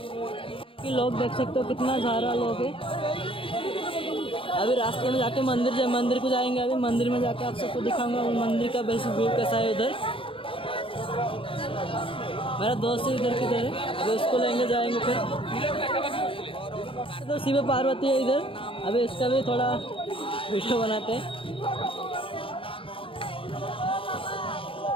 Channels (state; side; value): late; right; 0.26 ms